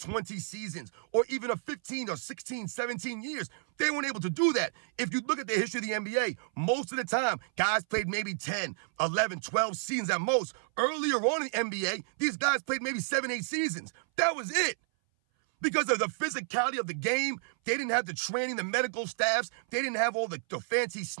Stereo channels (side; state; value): left; silent; 57 dB below the other